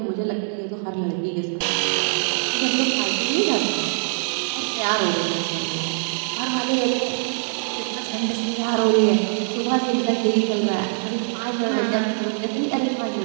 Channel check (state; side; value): silent; left; digital silence